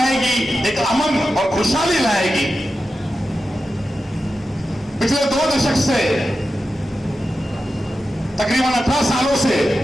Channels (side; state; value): both; normal; correlation 0.91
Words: एक अमन और खुशहाली लाएगी। पिछले 2 दशक से, तकरीबन 18 सालों से